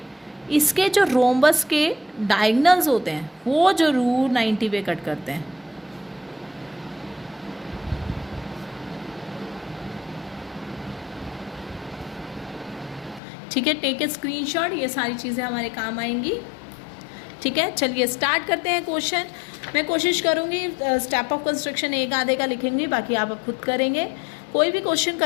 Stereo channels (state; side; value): drops out; right; at 13.2 s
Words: इसके जो रोम्बस के डायगनल्स होते हैं वो जरूर 90 पे कट करते हैं। ठीक है, टेक ए स्क्रीनशॉट, ये सारी चीज़ें हमारे काम आएंगी। ठीक है, चलिए स्टार्ट करते हैं क्वेश्चन। मैं कोशिश करूँगी स्टेप ऑफ कंस्ट्रक्शन एक आधे का लिखेंगे, बाकी आप खुद करेंगे। कोई भी क्वेश्चन